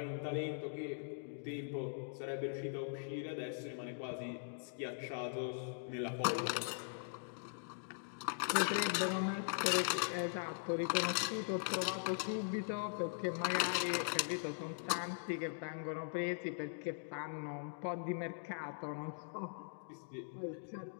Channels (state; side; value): silent; right; digital silence